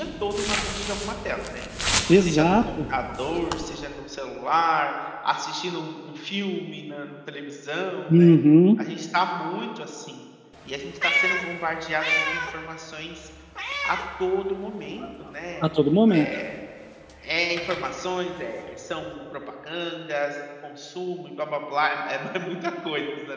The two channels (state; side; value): identical; both; correlation 1.00